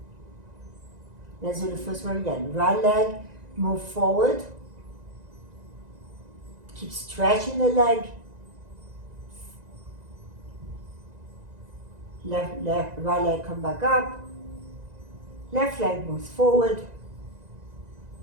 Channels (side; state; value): left; late; 1.9 ms